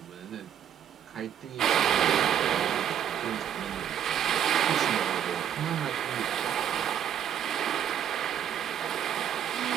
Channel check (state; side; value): quieter; left; 9.5 dB